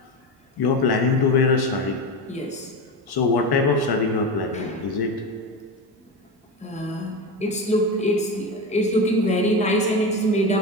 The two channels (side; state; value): both; normal; correlation 0.21